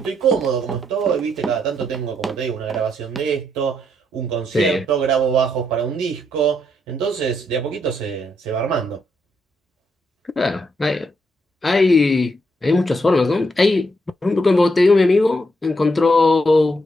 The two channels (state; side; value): normal; both; correlation 0.77